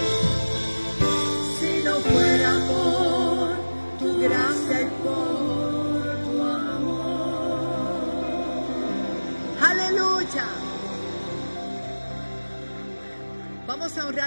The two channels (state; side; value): inverted; both; correlation -1.00